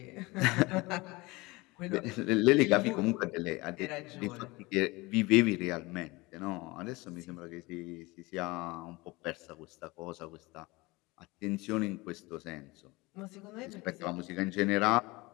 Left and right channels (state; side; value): quieter; right; 23.0 dB